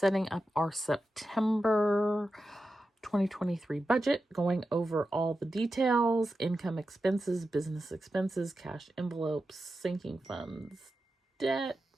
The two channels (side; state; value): both; normal; correlation 0.91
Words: up our September 2023 budget, going over all the details, income, expenses, business expenses, cash envelopes, sinking funds, debt,